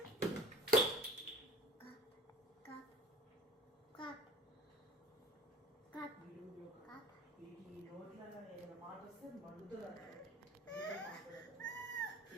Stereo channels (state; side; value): normal; both; correlation 0.46